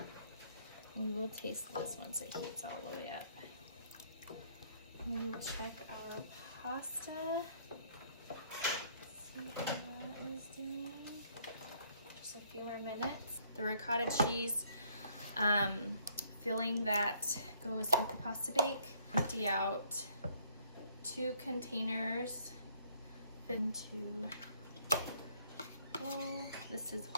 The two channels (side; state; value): both; inverted; correlation -0.65